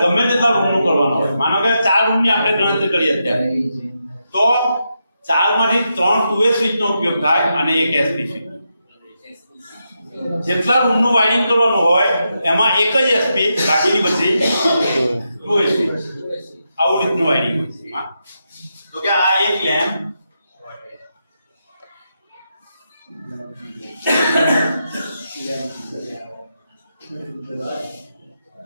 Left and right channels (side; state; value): both; inverted; correlation -0.85